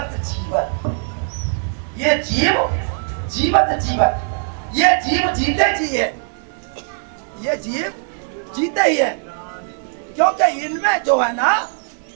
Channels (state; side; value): silent; left; 66 dB below the other